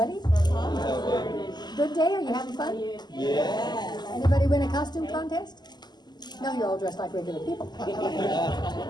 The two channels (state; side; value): late; right; 0.21 ms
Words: Good day. Are you having fun? Yeah. Anybody win a costume contest? No, you're all dressed like regular people.